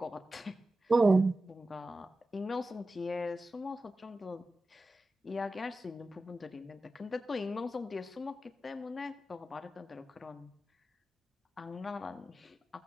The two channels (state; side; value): normal; both; correlation 0.94